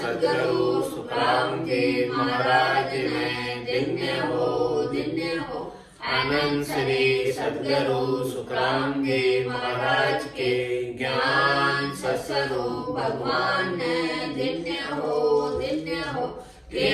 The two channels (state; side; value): identical; both; correlation 1.00